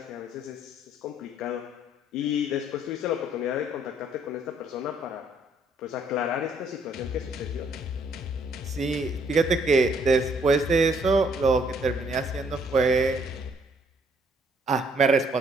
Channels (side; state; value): both; normal; correlation 0.66